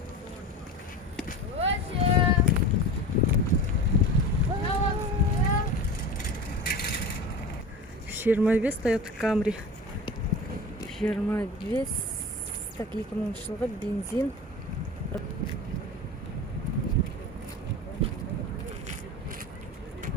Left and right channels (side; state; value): both; normal; correlation 0.32